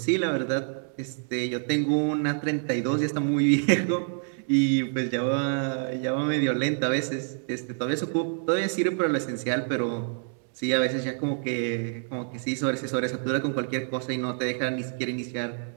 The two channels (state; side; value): silent; left; 60 dB below the other